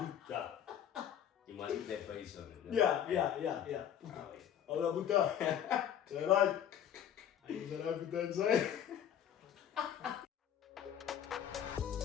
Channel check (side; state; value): right; quieter; 9.6 dB